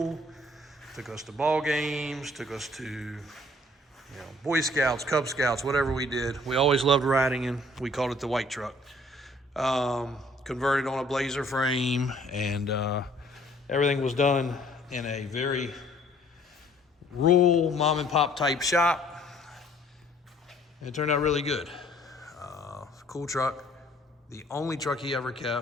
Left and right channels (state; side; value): normal; both; correlation 0.58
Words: took us to ball games, took us to you know, Boy Scouts, Cub Scouts, whatever we did. We always loved riding in. We called it the white truck. Converted on a Blazer frame, and everything was done in a very rural mom and pop type shop. It turned out really good. Cool truck. The only truck he ever